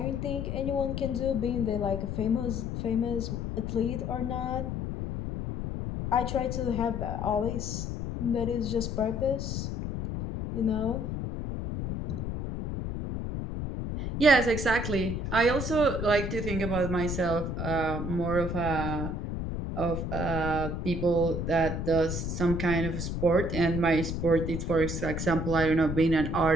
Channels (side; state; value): left; noise; rumble, 3 dB below the sound